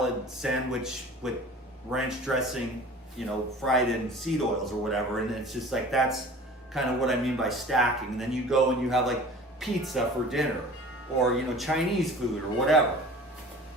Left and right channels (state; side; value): normal; both; correlation 0.43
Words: sandwich with ranch dressing, you know, fried in seed oils or whatever. And it's just like, that's kind of what I mean by stacking. And then you go and you have like pizza for dinner, or, you know, Chinese food or whatever.